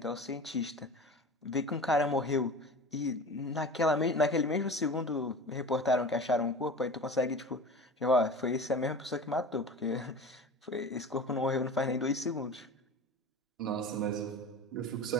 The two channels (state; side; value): normal; both; correlation 0.35